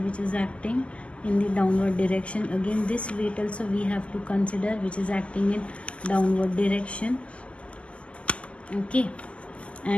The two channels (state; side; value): late; right; 0.057 ms